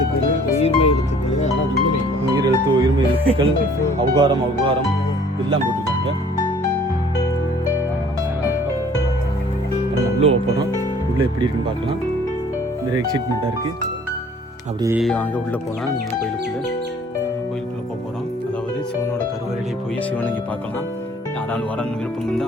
உயிர்மை எழுத்துக்கள், ஆனால் உயிரெழுத்து, உயிர்மை எழுத்துக்கள், அவுகாரம் எல்லாம் போட்டிருக்காங்க. உள்ளே போகிறோம். உள்ளே எப்படி இருக்குன்னு பார்க்கலாம். நிறைய எக்ஸைட்மெண்ட்டாக இருக்குது. அப்படியே வாங்க உள்ளே போகலாம். கோயிலுக்குள்ளே போக போகிறோம். அதாவது சிவனோட கருவறையிலே போய் சிவனை இங்கே பார்க்கலாம். யாராலும் வரன்னு விருப்பம்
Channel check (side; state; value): both; normal; correlation 0.55